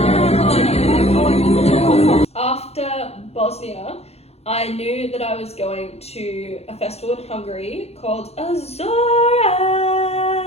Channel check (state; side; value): late; right; 0.30 ms